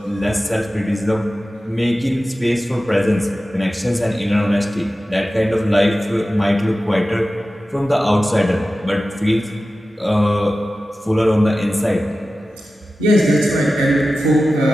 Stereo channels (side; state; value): both; normal; correlation 0.94